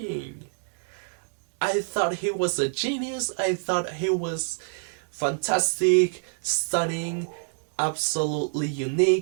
I thought he was a genius. I thought he was fantastic, stunning, absolutely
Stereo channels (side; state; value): left; silent; 60 dB below the other